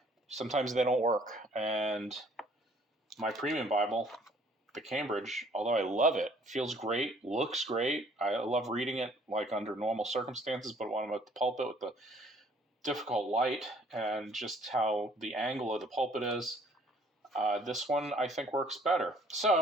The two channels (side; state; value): both; normal; correlation 0.58